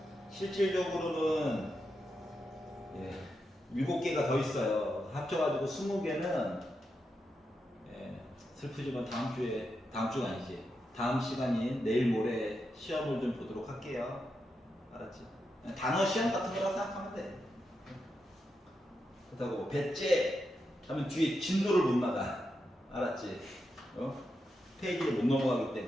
실질적으로는 7개가 더 있어요. 합쳐가지고 20개는 슬프지만 다음 주가 아니지. 다음 시간인 내일 모레 시험을 좀 보도록 할게요. 알았지? 단어 시험 같은 거라고 생각하면 돼. 그렇다고 배째, 하면 뒤에 진도를 못 나가. 알았지? 페이지를 못 넘어가기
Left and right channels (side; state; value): both; normal; correlation 0.86